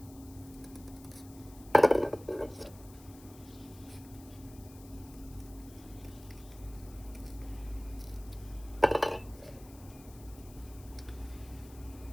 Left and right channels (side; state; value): left; noise; hiss, 21 dB below the sound